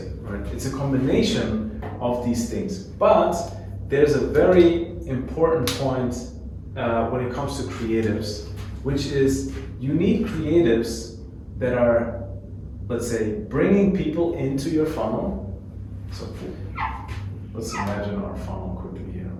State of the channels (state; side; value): identical; both; correlation 1.00